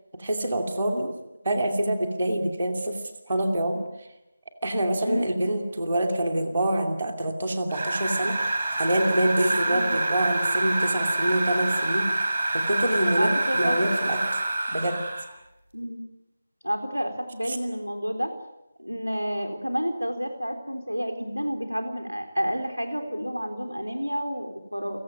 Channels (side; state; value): both; inverted; correlation -0.93